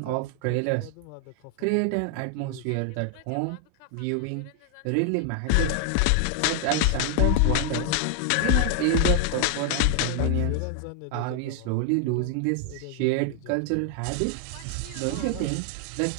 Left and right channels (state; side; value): different; both; correlation 0.00